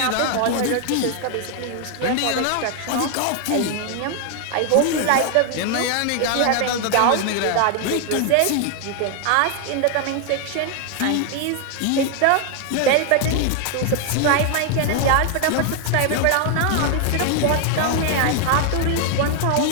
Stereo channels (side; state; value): both; different; correlation 0.00